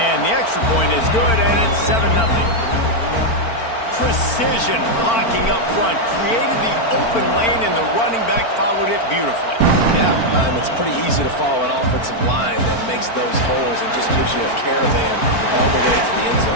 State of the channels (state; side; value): late; right; 4.4 ms